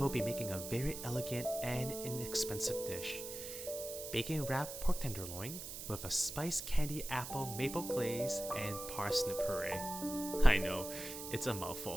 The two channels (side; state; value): right; noise; hiss, 8 dB below the sound